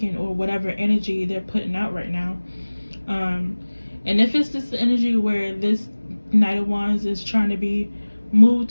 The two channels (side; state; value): both; inverted; correlation -1.00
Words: or whatever energy they're putting out right now. And if it's this energy where this Knight of Wands is trying to be moved